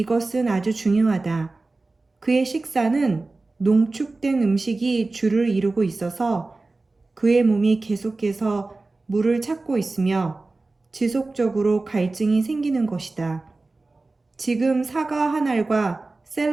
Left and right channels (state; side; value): quieter; left; 3.3 dB